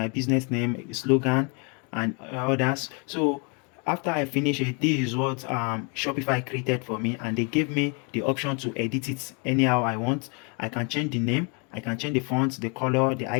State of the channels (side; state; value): right; quieter; 34.5 dB